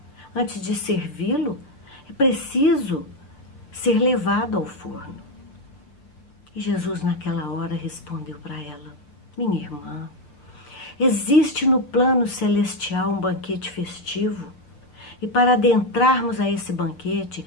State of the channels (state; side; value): late; right; 7.2 ms